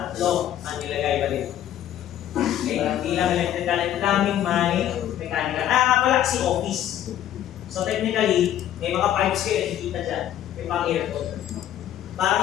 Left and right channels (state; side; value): quieter; right; 11.5 dB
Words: ang nilagay ba dito. Okay, hindi lang electrical and plumbing, may mechanical. Pala si office. So technically, may mga pipes kayo nakikita dyan. May pang aircon.